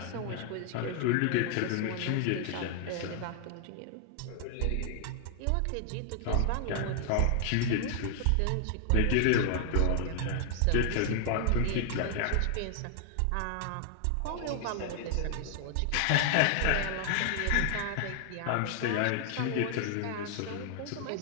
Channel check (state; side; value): different; both; correlation 0.00